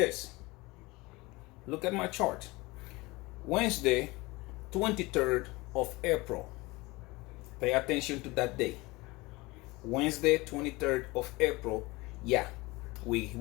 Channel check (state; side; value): quieter; right; 22.7 dB